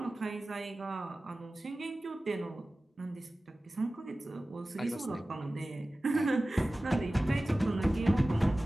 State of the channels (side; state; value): both; normal; correlation 0.96